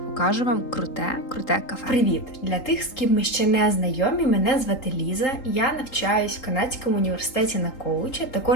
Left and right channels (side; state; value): right; late; 3.8 ms